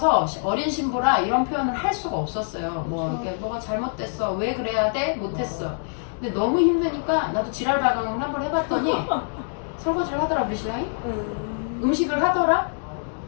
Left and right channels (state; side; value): silent; right; digital silence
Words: 어린 신부라 이런 표현을 할 수가 없었어요. 이렇게 뭐가 잘못됐어. 왜 그래야 돼? 못했어. 근데 너무 힘드니까 나도 지랄 발광을 한번 해봤더니 설거지를 하더라 우리 신랑이. 음식을 하더라.